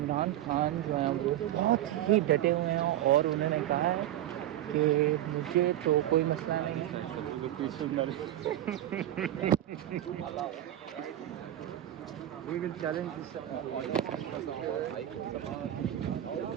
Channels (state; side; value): quieter; left; 12.8 dB